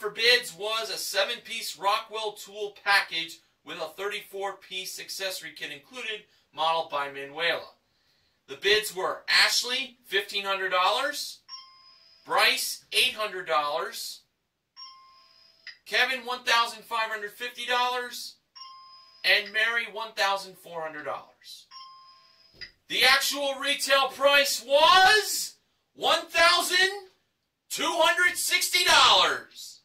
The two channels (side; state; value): both; identical; correlation 1.00